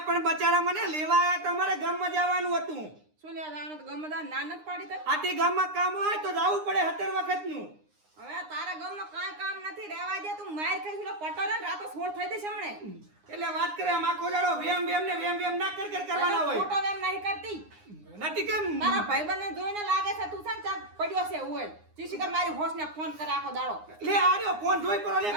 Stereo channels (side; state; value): left; late; 9.7 ms